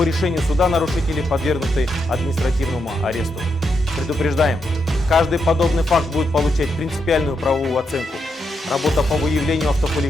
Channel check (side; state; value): both; normal; correlation 0.82